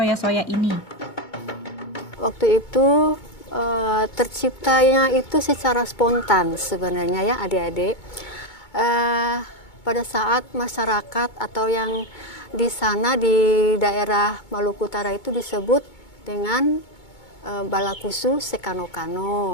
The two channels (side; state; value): right; late; 2.2 ms